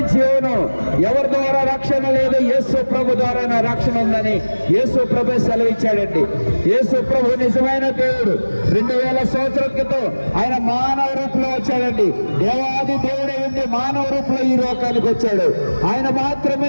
జీవను, ఎవరి ద్వారా రక్షణ లేదు, యేసు ప్రభు ద్వారా నా రక్షణ ఉందని యేసు ప్రభు సెలవిచ్చాడండి. యేసు ప్రభు నిజమైన దేవుడు. 2000 సంవత్సరాల క్రితం ఆయన మానవ రూపంలో వచ్చాడండి. దేవాది దేవుడే ఉండి మానవ రూపంలో ఈ లోకానికి వచ్చాడు. ఆయన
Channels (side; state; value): both; inverted; correlation -1.00